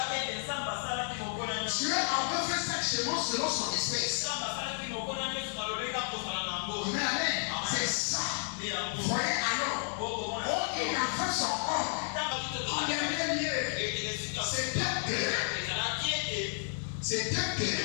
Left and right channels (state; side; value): silent; right; digital silence